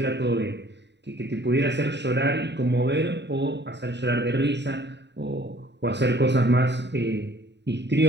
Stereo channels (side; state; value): left; late; 0.50 ms